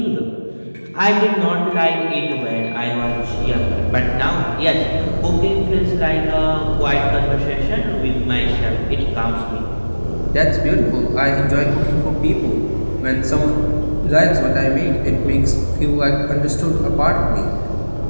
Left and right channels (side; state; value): both; inverted; correlation -1.00